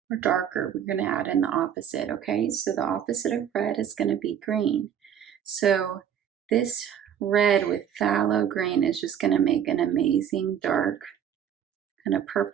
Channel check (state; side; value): quieter; left; 9.0 dB